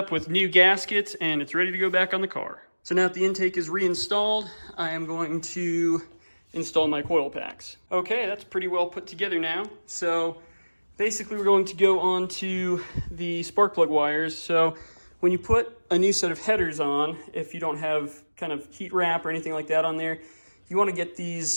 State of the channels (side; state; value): both; inverted; correlation -1.00